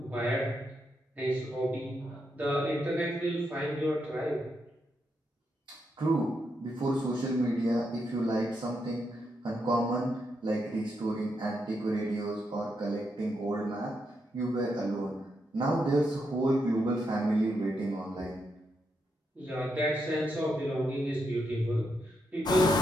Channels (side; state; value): both; normal; correlation 0.82